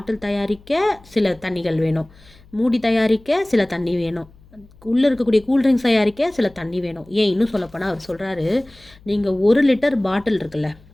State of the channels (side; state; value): left; noise; hum, 26 dB below the sound